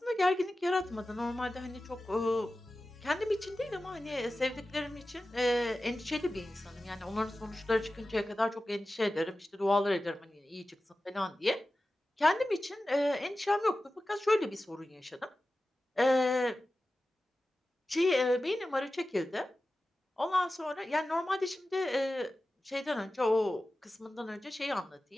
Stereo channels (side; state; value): both; normal; correlation 0.95